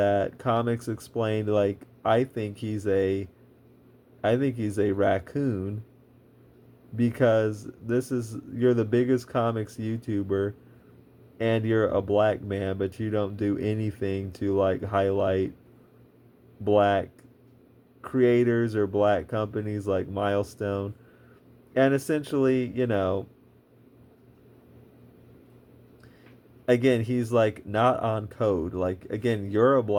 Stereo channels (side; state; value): both; identical; correlation 1.00